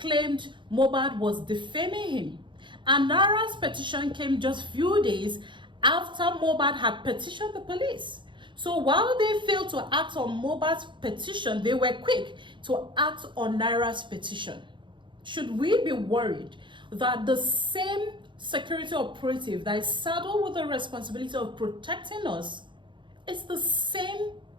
Mohbad was defaming him. And Naira's petition came just few days after Mohbad had petitioned the police. So while they failed to act on Mohbad's petition, they were quick to act on Naira's petition. Should we be worried that the same security operative that is saddled with the responsibility of protecting us is the same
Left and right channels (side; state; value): left; late; 0.23 ms